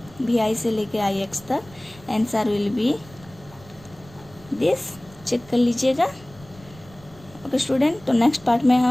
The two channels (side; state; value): right; noise; rumble, 23 dB below the sound